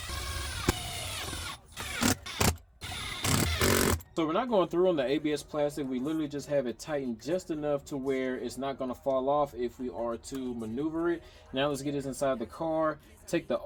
So we're not going through on the ABS plastic. We literally just have it tightened just enough to where it's not going to fall off if we are to maneuver it. Now let's get this inside the car, take the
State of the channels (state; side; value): identical; both; correlation 1.00